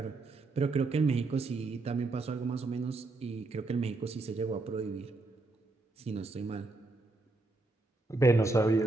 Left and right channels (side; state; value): left; quieter; 3.3 dB